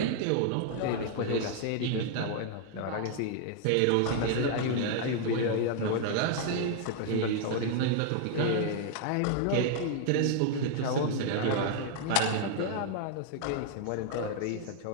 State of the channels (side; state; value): both; different; correlation 0.00